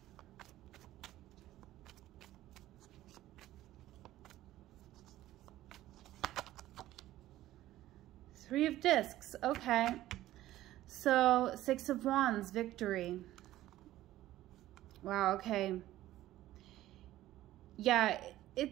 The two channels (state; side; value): quieter; left; 14.7 dB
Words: Three of Discs, okay. So, Six of Wands, victory. Wow, okay. Yeah,